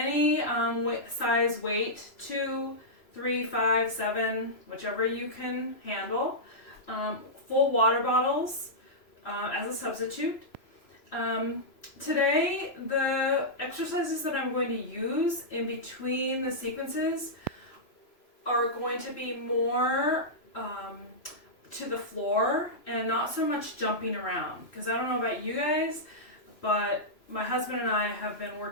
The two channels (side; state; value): right; late; 3.0 ms